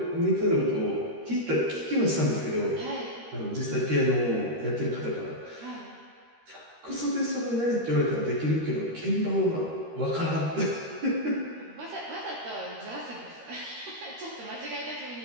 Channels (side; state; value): left; late; 13 ms